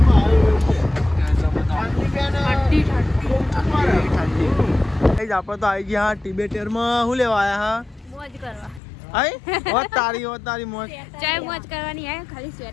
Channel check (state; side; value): drops out; right; at 8.8 s